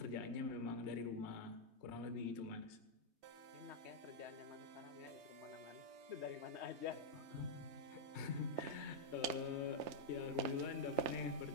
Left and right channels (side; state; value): left; late; 3.2 ms